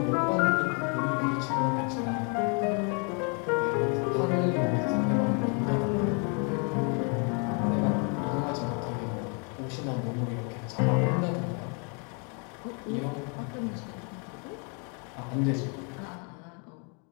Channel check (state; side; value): quieter; right; 36.7 dB